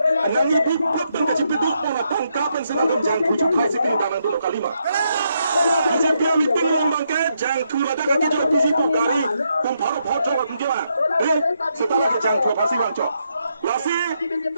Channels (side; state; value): both; inverted; correlation -0.79